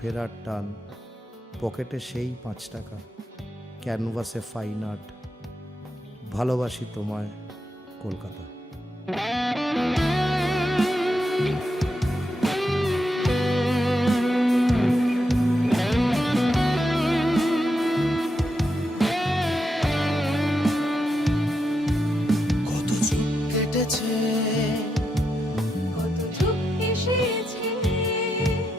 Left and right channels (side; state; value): both; normal; correlation 0.84